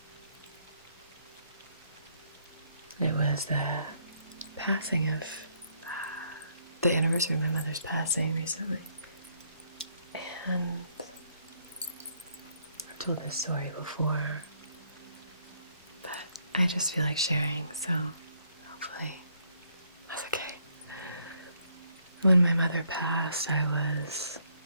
It was the passing of the anniversary of my mother's passing recently. And I've told this story before, but I just feel like sharing, so hopefully that's okay. When my mother passed, I was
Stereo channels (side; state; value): both; inverted; correlation -0.70